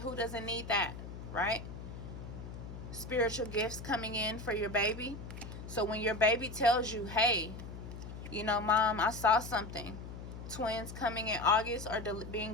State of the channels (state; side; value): noise; left; hum, 10 dB below the sound